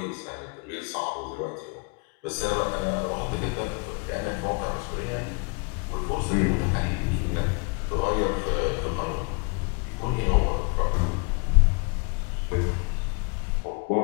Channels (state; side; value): quieter; right; 33.2 dB